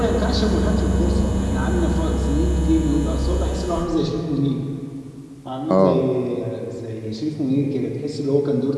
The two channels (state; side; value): identical; both; correlation 1.00